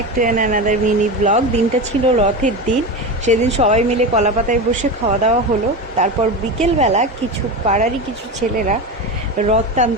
to another mini blog. দিনটা ছিল রথের দিন। সেদিন সবাই মিলে কলাপাতায় বসে খাওয়া দাওয়া হলো। তারপর বিকেলবেলা কিছু পাড়ারই কিছু ছেলেরা রথ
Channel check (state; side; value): normal; both; correlation 0.22